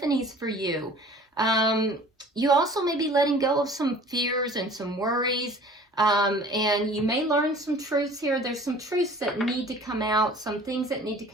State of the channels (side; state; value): both; normal; correlation 0.47